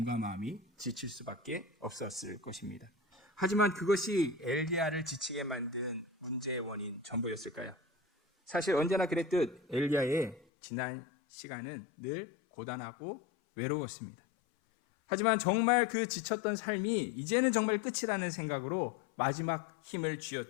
마음이 지칠 수밖에 없었을 것입니다. 하지만 그것이 엘리야를 지치게 만든 문제의 원인 전부였을까요? 사실 언제나 그랬듯 엘리야의 지난 시간은 늘 고단하고 외로웠습니다. 하지만 정말 그 지쳤던 삶이 이제는 정말 끝이라는 생각으로 마지막 힘을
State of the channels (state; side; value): drops out; right; at 10.5 s